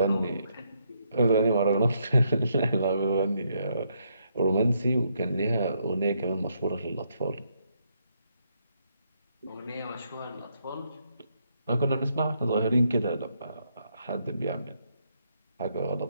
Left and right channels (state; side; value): inverted; both; correlation -0.76